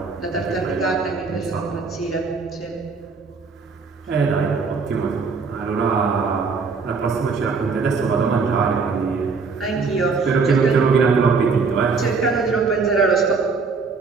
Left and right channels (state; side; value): quieter; left; 4.8 dB